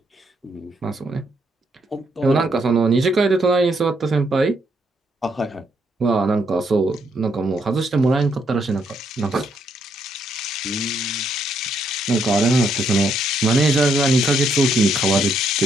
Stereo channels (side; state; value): both; normal; correlation 0.74